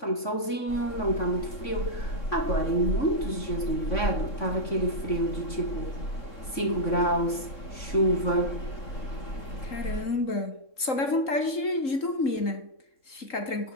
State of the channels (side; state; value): right; late; 3.8 ms